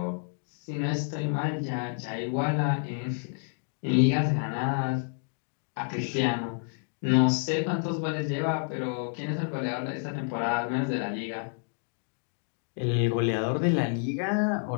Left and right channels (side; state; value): right; silent; 58 dB below the other